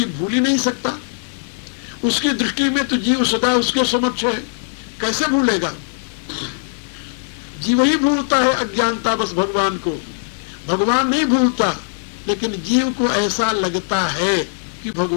भूल ही नहीं सकता। उसकी दृष्टि में तो जीव सदा उसके समक्ष है, कैसे भूलेगा? जीव ही भूलता है अज्ञानतावश भगवान को, भगवान नहीं भूलता। लेकिन जीव को ऐसा लगता है कि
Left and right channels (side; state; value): right; silent; 57 dB below the other